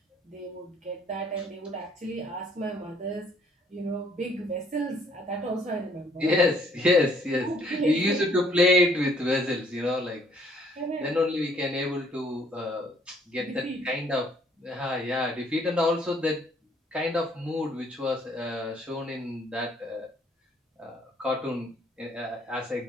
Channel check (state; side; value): normal; both; correlation 0.63